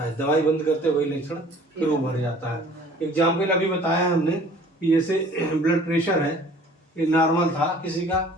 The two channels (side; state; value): both; normal; correlation 0.51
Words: है। दवाई बंद करते वही लक्षण फिर उभर जाता है। एग्जाम्पल अभी बताया हमने कि जैसे ब्लड प्रेशर है, ये नॉर्मल था किसी का,